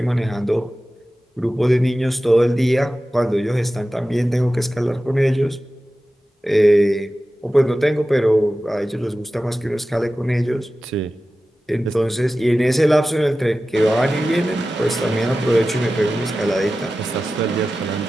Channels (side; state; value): both; normal; correlation 0.95